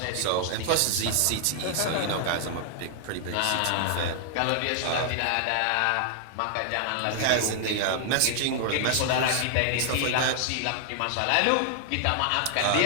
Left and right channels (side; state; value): both; different; correlation 0.00